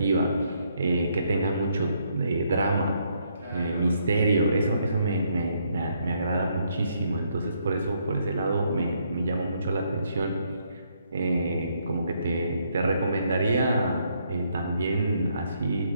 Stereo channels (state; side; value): inverted; both; correlation -0.73